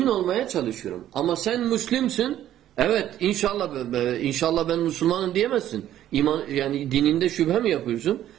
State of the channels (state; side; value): quieter; left; 12.1 dB